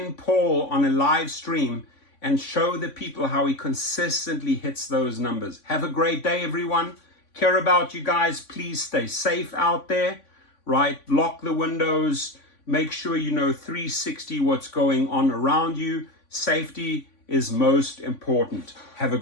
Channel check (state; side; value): late; right; 3.5 ms